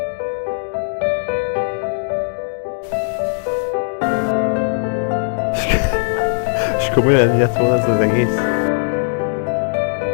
És komolyan ennyi lett volna ez az egész?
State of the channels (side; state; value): right; silent; digital silence